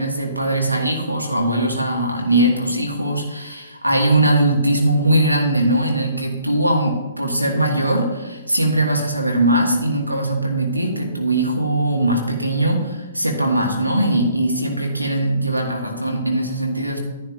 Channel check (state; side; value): inverted; both; correlation -0.64